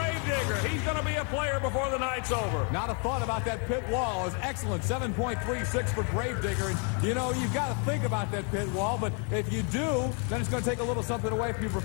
He's going to be a player before the night's over. Not a thought about that pit wall. Is excellent. 7.36 for Gravedigger. And, you've got to think about that pit wall, but if you do, then it's going to take a little something away from your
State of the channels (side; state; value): right; quieter; 37.8 dB